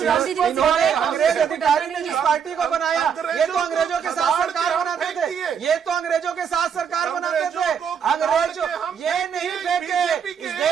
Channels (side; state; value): left; quieter; 7.3 dB